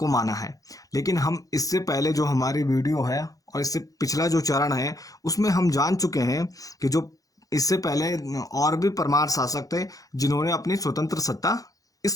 माना है। लेकिन हम इससे पहले जो हमारी वीडियो है और इससे पिछला जो चरण है उसमें हम जान चुके हैं कि जो इससे पहले और भी परमार शासक थे जिन्होंने अपनी स्वतंत्र सत्ता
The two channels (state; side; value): late; right; 0.17 ms